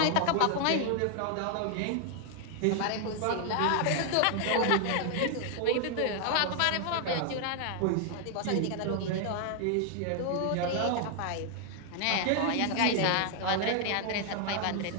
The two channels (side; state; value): both; different; correlation 0.00